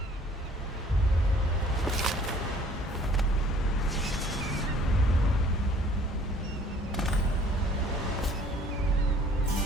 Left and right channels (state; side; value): normal; both; correlation 0.55